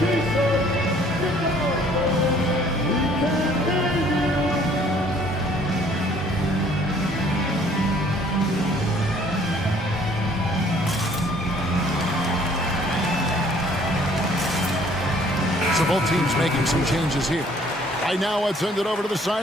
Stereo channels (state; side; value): normal; both; correlation 0.58